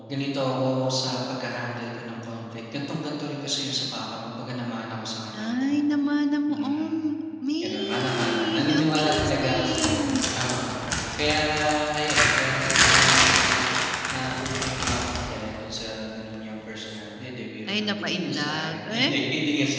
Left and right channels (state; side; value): identical; both; correlation 1.00